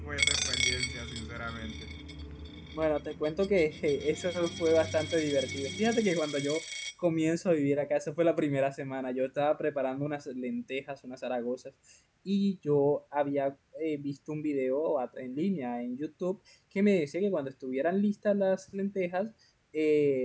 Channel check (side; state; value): both; identical; correlation 1.00